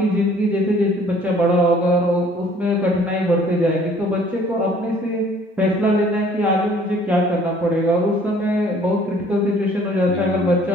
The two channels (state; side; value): normal; both; correlation 0.56